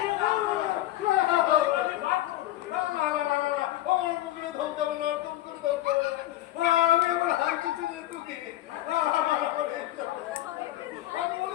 আমি এবার হাই কিচেনে ঢুকি। আমি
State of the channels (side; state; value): right; quieter; 15.2 dB